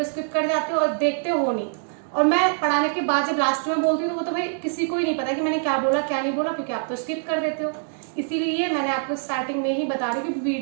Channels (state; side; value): silent; left; digital silence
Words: स्किप कर जाते हो और देखते हो नहीं। और मैं पढ़ाने के बाद जब लास्ट में बोलती हूँ तो वो तो भाई किसी को ही नहीं पता कि मैंने क्या बोला क्या नहीं बोला, क्योंकि आप तो स्किप कर देते हो। इसीलिए मैंने आपको स्टार्टिंग में ही बता रही हूँ कि